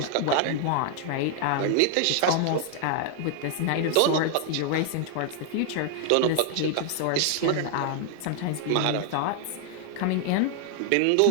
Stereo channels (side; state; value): both; different; correlation 0.00